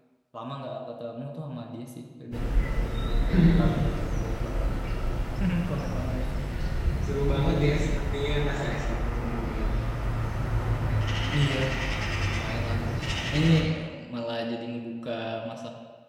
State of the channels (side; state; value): both; identical; correlation 1.00